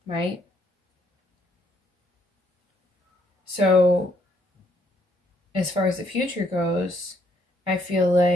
right? So as far as the future goes, I feel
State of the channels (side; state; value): both; normal; correlation 0.71